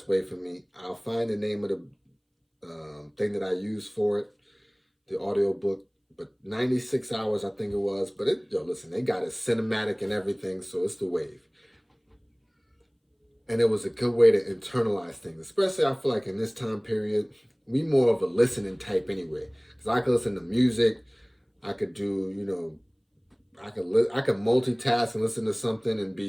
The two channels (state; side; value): identical; both; correlation 1.00